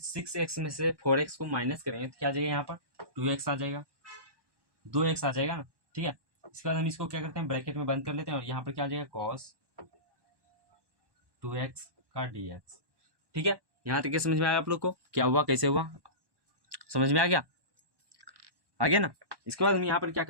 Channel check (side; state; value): left; late; 1.1 ms